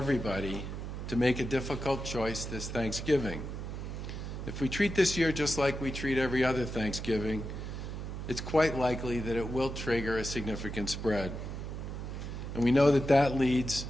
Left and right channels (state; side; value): noise; right; hum, 6 dB below the sound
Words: to make a difficult choice this Thanksgiving. If we treat this year just like we treat every other Thanksgiving, it's quite likely that it will trigger a significant spread. And we know that that leads